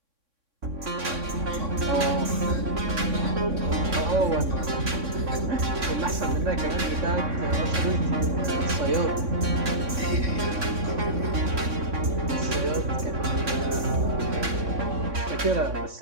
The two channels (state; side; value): late; left; 3.6 ms